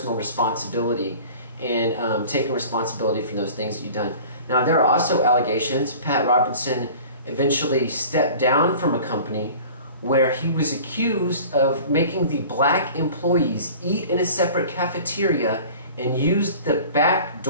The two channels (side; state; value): both; inverted; correlation -0.43